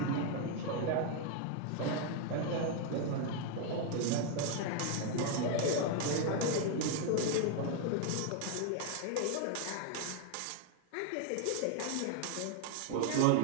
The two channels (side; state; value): both; different; correlation 0.01